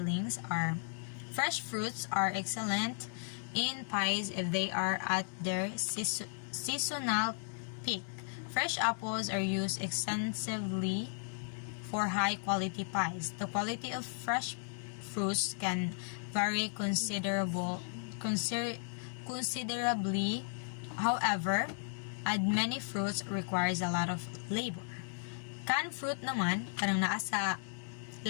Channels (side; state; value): right; silent; digital silence